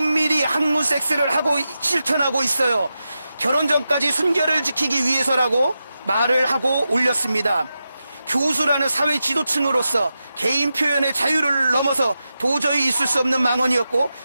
학문 섹스를 하고 실천하고 있어요. 결혼 전까지 순결을 지키기 위해서라고 말을 하고 올렸습니다. 교수라는 사회 지도층으로서 개인 표현의 자유를 넘어서 도저히 있을 수 없는 망언이었고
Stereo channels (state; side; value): inverted; both; correlation -0.90